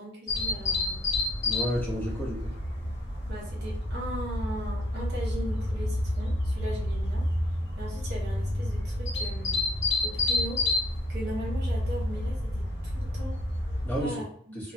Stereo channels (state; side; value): normal; both; correlation 0.64